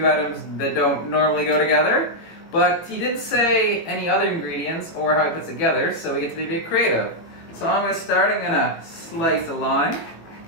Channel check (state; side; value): late; right; 19 ms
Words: items that don't normally go together. But he didn't say any other ingredients or how it puts together, so we get to be a bit creative. So I'm going to start. I'm going to slice a lime,